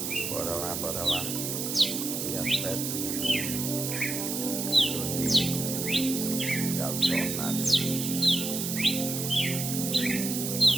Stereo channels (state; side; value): noise; right; hiss, 3 dB below the sound